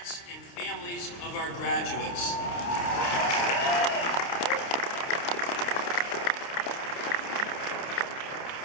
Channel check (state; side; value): late; right; 29 ms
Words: and families of our graduates.